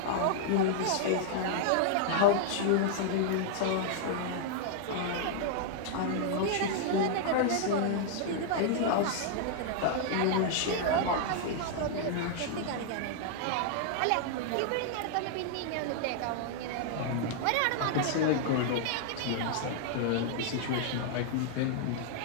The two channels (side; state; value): both; different; correlation -0.01